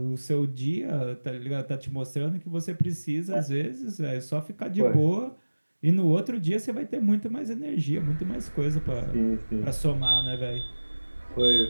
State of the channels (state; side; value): inverted; both; correlation -1.00